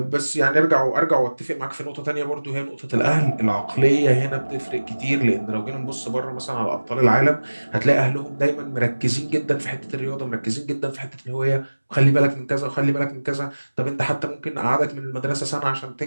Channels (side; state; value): both; inverted; correlation -1.00